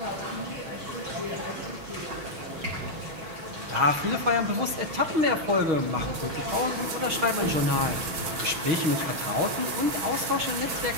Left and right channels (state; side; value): late; left; 6.3 ms